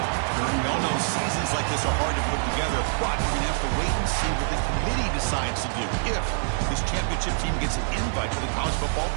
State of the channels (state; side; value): silent; left; digital silence